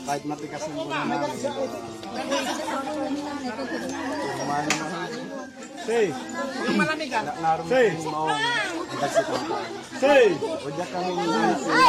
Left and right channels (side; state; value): both; identical; correlation 1.00